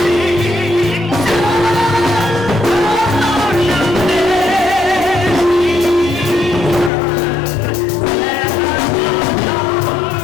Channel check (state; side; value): drops out; right; at 6.9 s